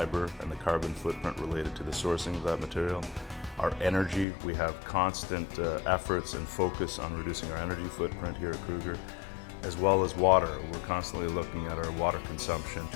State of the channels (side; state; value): right; drops out; at 4.2 s